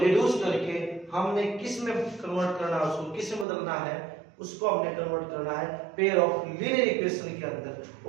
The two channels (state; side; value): drops out; left; at 3.5 s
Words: करके हमने किस में कन्वर्ट करना है, उसको किस में बदलना है, उसको हमने कन्वर्ट करना है पेयर ऑफ लीनियर इक्वेशन के अंदर।